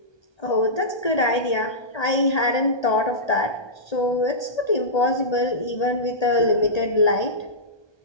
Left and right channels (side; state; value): right; late; 1.8 ms